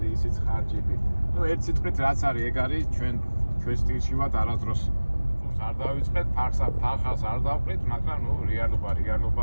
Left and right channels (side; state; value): both; inverted; correlation -1.00